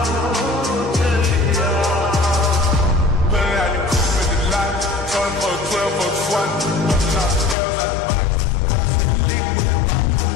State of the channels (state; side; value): drops out; right; at 7.6 s